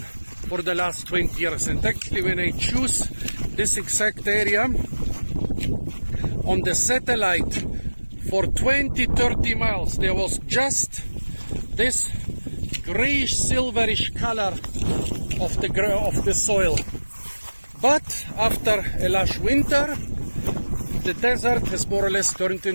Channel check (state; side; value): inverted; both; correlation -1.00